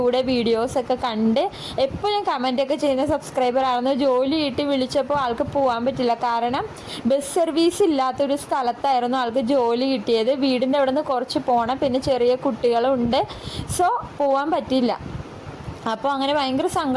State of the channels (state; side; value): identical; both; correlation 1.00